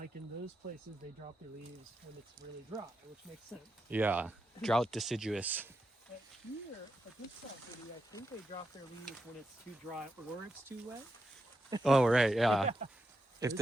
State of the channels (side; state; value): both; normal; correlation 0.86